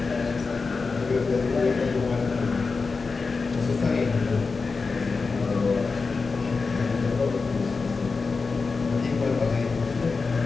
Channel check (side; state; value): right; quieter; 4.4 dB